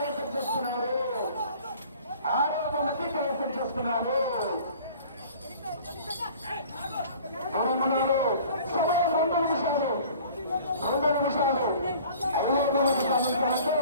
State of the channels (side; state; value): both; inverted; correlation -0.48